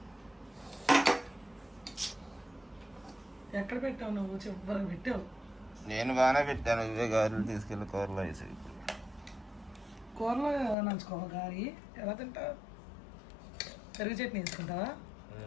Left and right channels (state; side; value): drops out; right; at 10.8 s